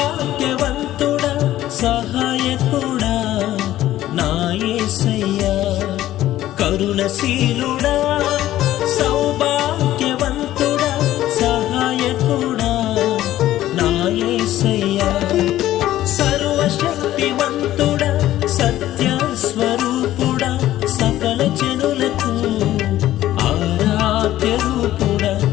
సహాయకుడా నా యేసయ్యా. కరుణశీలుడా సౌభాగ్యవంతుడా సహాయకుడా నా యేసయ్యా. సర్వశక్తివంతుడా సత్య స్వరూపుడా సకల జనులకు ఆరాధ్య రూపుడా.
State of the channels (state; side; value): quieter; right; 14.0 dB